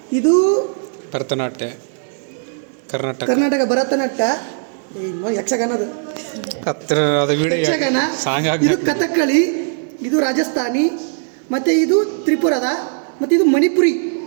ಇದು ಭರತನಾಟ್ಯ, ಕರ್ನಾಟಕ ಭರತನಾಟ್ಯ, ಯಕ್ಷಗಾನದು ಯಕ್ಷಗಾನ, ಇದು ಕಥಕ್ಕಳಿ, ಇದು ರಾಜಸ್ಥಾನಿ, ಮತ್ತು ಇದು ತ್ರಿಪುರದ, ಮತ್ತು ಇದು ಮಣಿಪುರಿ.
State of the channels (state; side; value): silent; left; digital silence